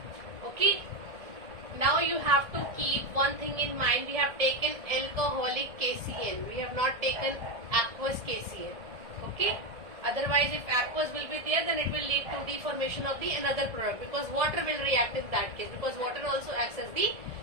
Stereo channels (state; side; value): late; left; 1.6 ms